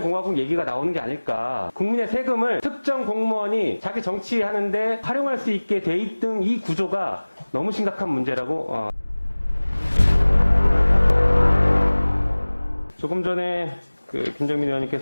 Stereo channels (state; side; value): inverted; both; correlation -1.00